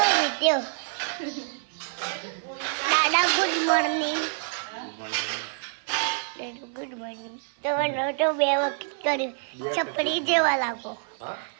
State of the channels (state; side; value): silent; left; 59 dB below the other